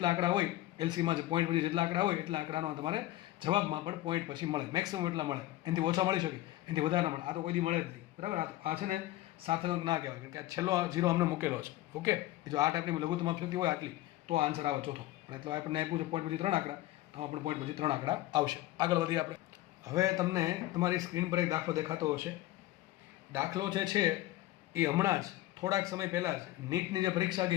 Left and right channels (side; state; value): right; quieter; 16.1 dB